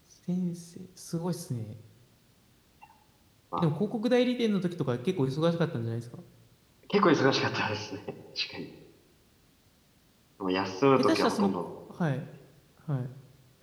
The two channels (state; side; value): identical; both; correlation 1.00